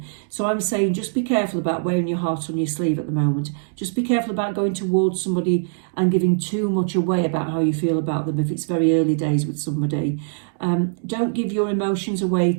So I'm saying just be careful about wearing your heart on your sleeve at the moment. Just be careful about going towards somebody and giving too much away about how you feel about them if it's very early days with somebody. Don't give your emotions away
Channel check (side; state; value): left; silent; digital silence